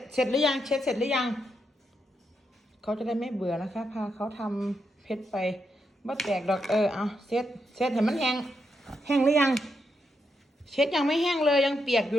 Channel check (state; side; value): normal; both; correlation 0.82